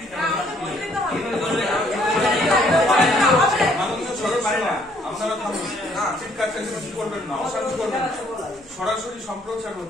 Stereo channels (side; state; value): both; normal; correlation 0.65